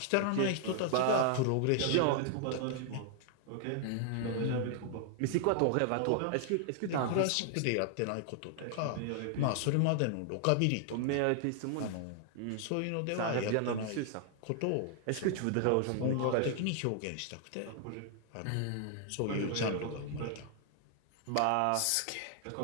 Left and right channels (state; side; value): different; both; correlation 0.00